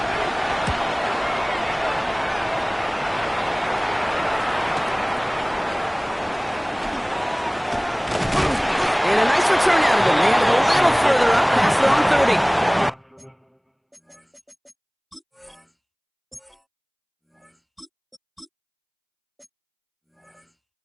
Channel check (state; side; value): identical; both; correlation 1.00